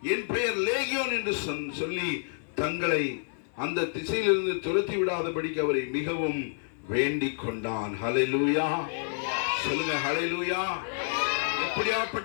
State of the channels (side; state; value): right; silent; digital silence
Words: என் பெயர் லேகியோன் என்று சொல்லி தங்களை அந்த திசையிலிருந்து துரத்தி விடாதபடிக்கு அவரை மிகவும் வேண்டிக் கொண்டான். ஹல்லேலூயா. சொல்லுங்க, ஹல்லேலூயா.